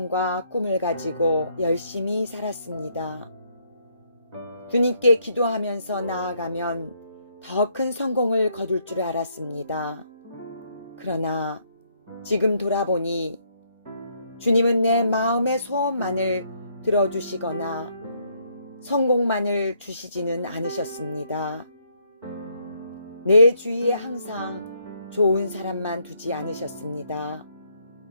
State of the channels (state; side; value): inverted; both; correlation -0.71